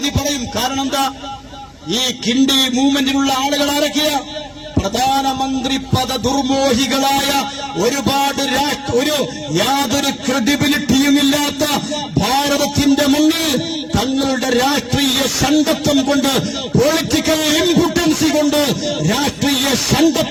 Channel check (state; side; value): identical; both; correlation 1.00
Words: പറയും. കാരണം എന്താ? ഈ കിണ്ടി മൂവ്മെന്റിലുള്ള ആളുകൾ ആരൊക്കെയാ? പ്രധാനമന്ത്രി പദ ദുർമോഹികളായ ഒരുപാട് യാതൊരു ക്രെഡിബിലിറ്റിയുമില്ലാത്ത ഭാരതത്തിന്റെ മുന്നിൽ തങ്ങളുടെ രാഷ്ട്രീയ സംഘത്വം കൊണ്ട്, പൊളിറ്റിക്കൽ ഇംപോർട്ടൻസി കൊണ്ട്, രാഷ്ട്രീയ